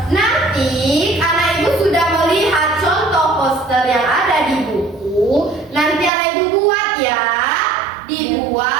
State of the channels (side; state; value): left; drops out; at 6.1 s